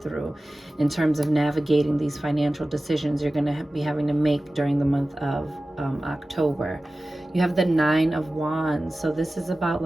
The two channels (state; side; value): normal; both; correlation 0.96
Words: through in terms of navigating these financial decisions you're going to be having to make during the month of October. You have the 9 of Wands. So this is about